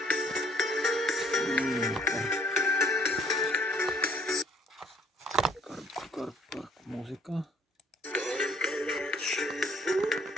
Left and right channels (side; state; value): both; normal; correlation 0.62